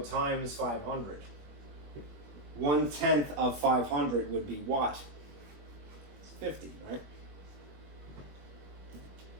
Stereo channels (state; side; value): late; left; 21 ms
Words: times 500. 1/10 of 500 would be what? It's 50, right?